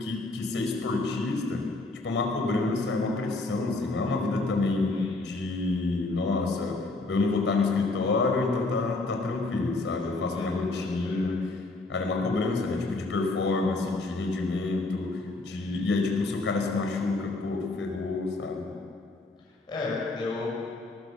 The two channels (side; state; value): right; quieter; 3.1 dB